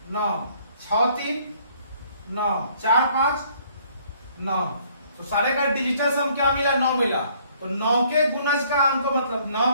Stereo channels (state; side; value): inverted; both; correlation -0.62